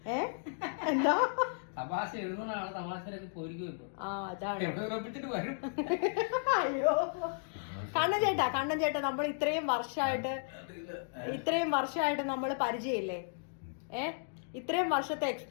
എന്താ തമാശ എഴുതുന്നതാണ് തമാശയിലേക്ക് പോയിരിക്കും. അതാണ്. അയ്യോ കണ്ണൻ ചേട്ടാ നമ്മൾ ഇത്രയും വർഷമായിട്ട് നമ്മൾ പരിചയമില്ലേ? ഇത്രയും വർഷത്തെ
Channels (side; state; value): right; silent; digital silence